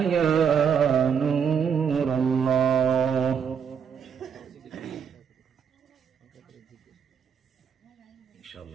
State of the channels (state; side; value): quieter; left; 7.3 dB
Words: يا نور الله। إن شاء